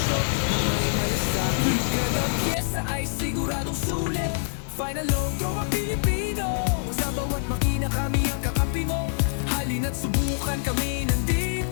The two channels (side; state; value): right; silent; digital silence